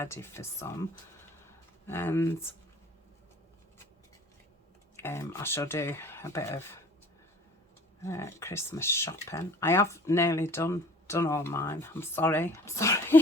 for some. And I shall do a bit of Christmas shopping. I have nearly done all mine. I'm sorry,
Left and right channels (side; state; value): both; normal; correlation 0.48